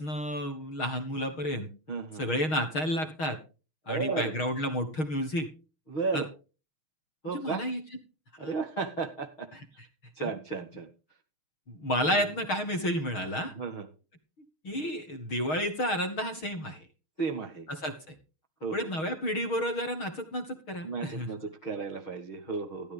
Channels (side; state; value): right; late; 6.4 ms